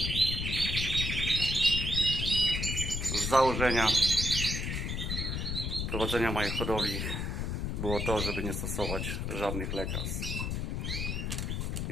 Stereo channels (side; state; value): left; noise; rumble, 2 dB below the sound